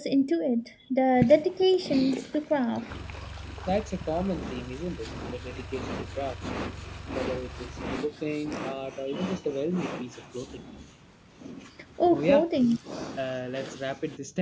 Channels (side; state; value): both; identical; correlation 1.00